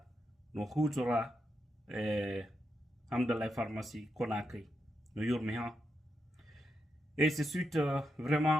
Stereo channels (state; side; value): normal; both; correlation 0.84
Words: no hutora Hamdallah pharmacie Conakry no yurmi ha. Et c'est suite